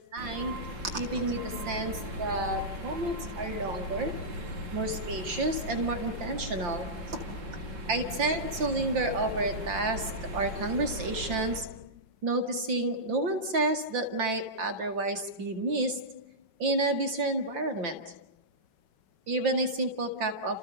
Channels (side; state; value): left; late; 5.8 ms